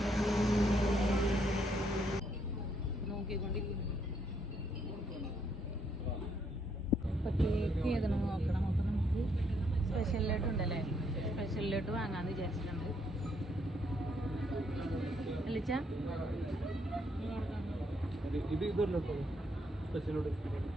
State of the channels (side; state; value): both; normal; correlation 0.73